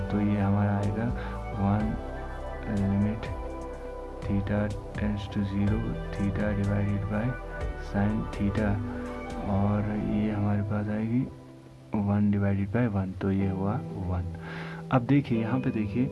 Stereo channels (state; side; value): identical; both; correlation 1.00